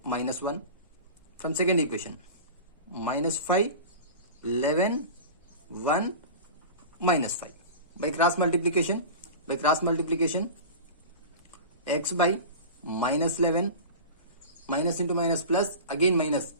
-1. From second equation, -5, 11, 1, -5. By cross multiplication, x by -11, minus into minus plus, again minus,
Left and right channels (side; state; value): both; inverted; correlation -0.32